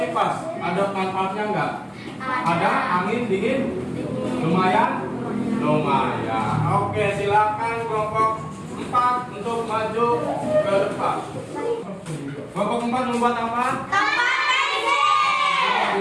Ada manfaatnya nggak? Ada angin dingin? Lumayan? Lumayan. Oke, silakan kelompok 4 untuk maju ke depan. Kelompok 4 membuat apa?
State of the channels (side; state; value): both; identical; correlation 1.00